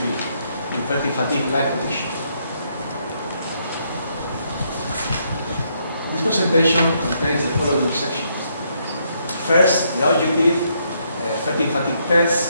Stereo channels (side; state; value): both; inverted; correlation -0.74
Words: in Fertig Fatigue Light Prediction. This presentation contains the following sections. First, the objective, Fertig Fatigue